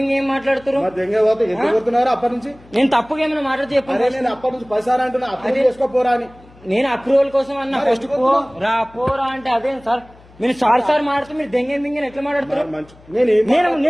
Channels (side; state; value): left; noise; hum, 25 dB below the sound